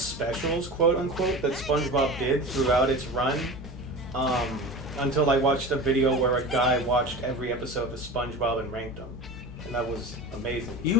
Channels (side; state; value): both; normal; correlation 0.32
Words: quote unquote, that SpongeBob did throughout its run. Until I watched a video where a guy watched every episode of SpongeBob and ranked them, and that was amazing.